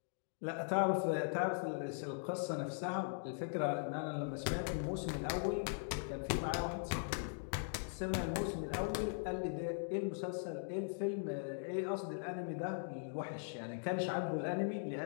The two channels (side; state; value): right; silent; digital silence